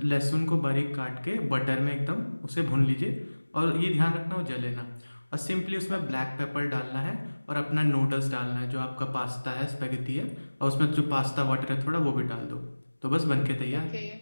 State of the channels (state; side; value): inverted; both; correlation -1.00